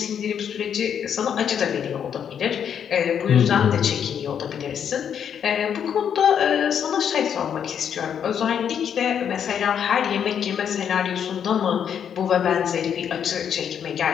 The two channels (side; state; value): right; quieter; 8.3 dB